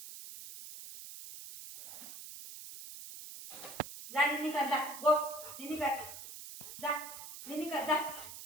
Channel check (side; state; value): right; noise; hiss, 12 dB below the sound